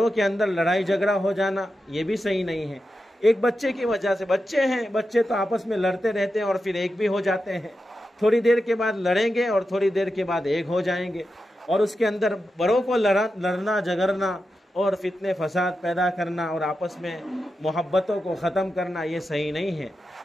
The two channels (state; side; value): normal; both; correlation 0.89